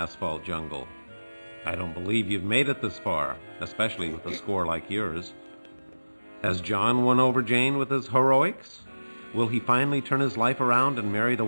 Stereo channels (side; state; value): both; inverted; correlation -1.00